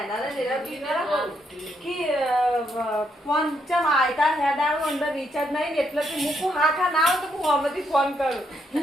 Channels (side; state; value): both; normal; correlation 0.76